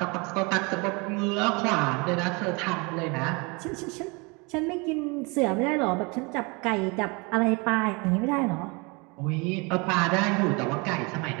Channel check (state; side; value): quieter; left; 28.9 dB